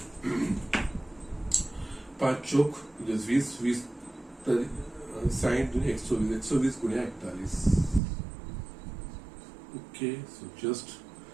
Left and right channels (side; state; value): left; drops out; at 8.0 s